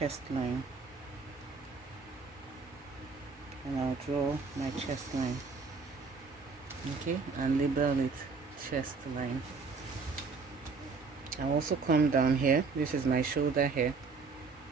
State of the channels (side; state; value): left; quieter; 4.7 dB